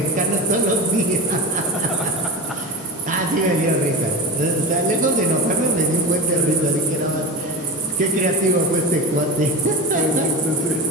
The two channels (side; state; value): both; normal; correlation 0.25